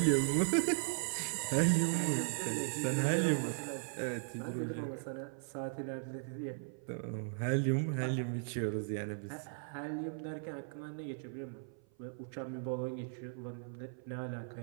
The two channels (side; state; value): left; silent; 53 dB below the other